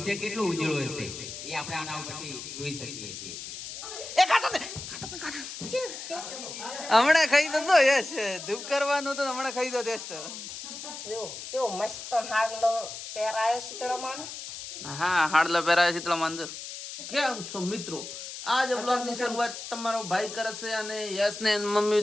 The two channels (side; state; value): left; noise; hiss, 10 dB below the sound